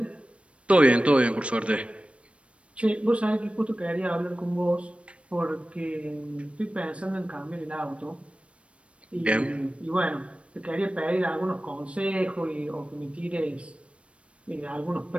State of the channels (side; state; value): left; late; 0.061 ms